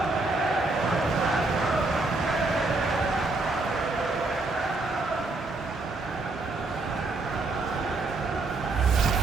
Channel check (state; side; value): quieter; left; 3.3 dB